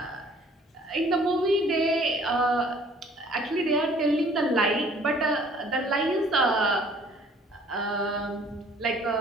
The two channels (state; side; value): normal; both; correlation 0.56